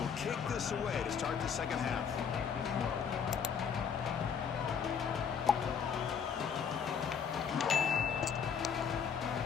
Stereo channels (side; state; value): right; quieter; 7.0 dB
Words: kick this away to start the second half.